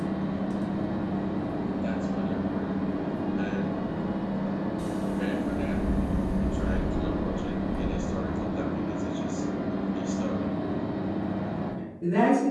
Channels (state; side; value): identical; both; correlation 1.00